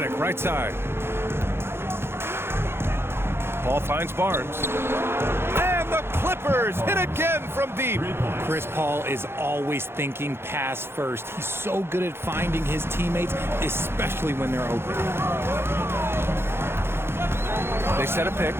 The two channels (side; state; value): left; late; 0.11 ms